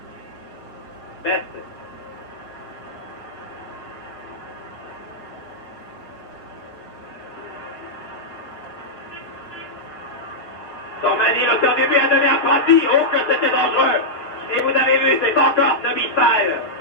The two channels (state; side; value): late; right; 6.6 ms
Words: Best. Sormani, l'auteur du but, a donné à Prati. Oh, que c'était dangereux. Et vous avez vu, c'est encore Nobi Fall.